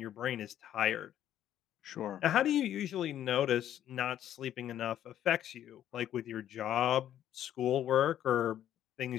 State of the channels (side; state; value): right; quieter; 11.3 dB